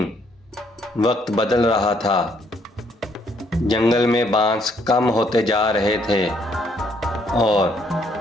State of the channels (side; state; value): both; normal; correlation 0.68